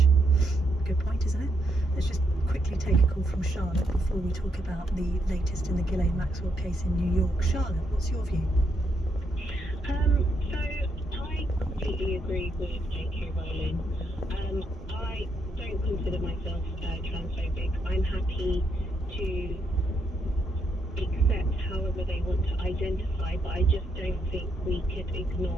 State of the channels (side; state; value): both; normal; correlation 0.78